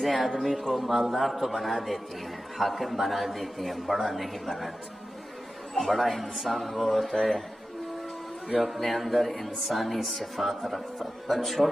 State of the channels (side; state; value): both; normal; correlation 0.93